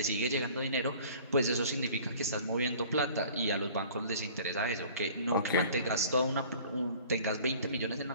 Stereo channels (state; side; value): inverted; both; correlation -0.47